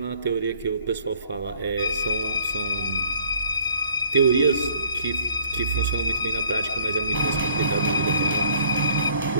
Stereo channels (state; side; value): inverted; both; correlation -0.58